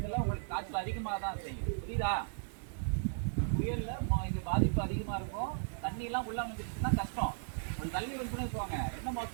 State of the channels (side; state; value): left; silent; digital silence